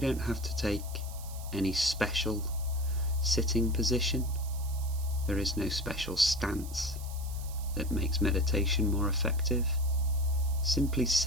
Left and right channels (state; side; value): noise; right; hiss, 16 dB below the sound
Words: have to take any special sitting position. There is no special stance that makes meditation more effective. Simply